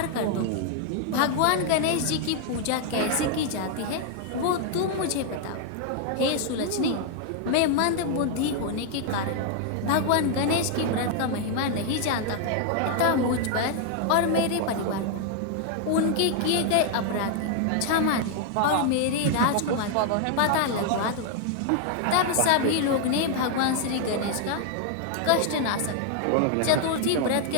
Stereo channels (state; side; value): different; both; correlation 0.00